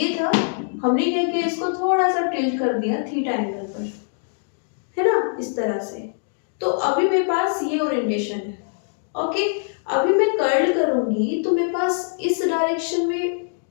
था, हमने क्या किया, इसको थोड़ा सा टिल्ट कर दिया थीटा एंगल पर, है ना, इस तरह से। तो अभी मेरे पास ये ओरिएंटेशन है। ओके, अभी मैं कर्ल करूंगी तो मेरे पास इस डायरेक्शन में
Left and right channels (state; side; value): silent; right; digital silence